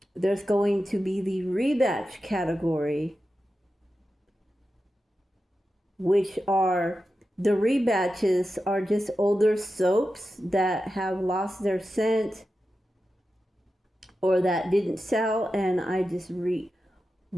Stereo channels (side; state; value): both; normal; correlation 0.91